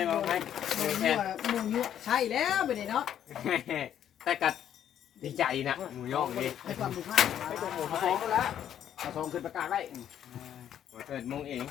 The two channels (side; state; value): right; quieter; 10.1 dB